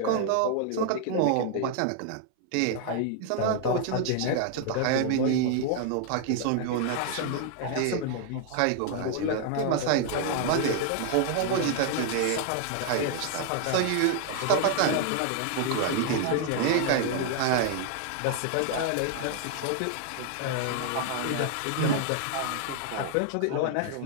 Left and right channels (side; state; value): both; different; correlation 0.00